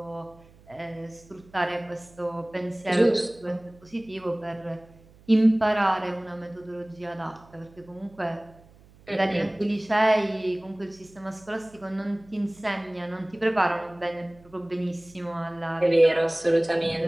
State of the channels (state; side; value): noise; right; hum, 26 dB below the sound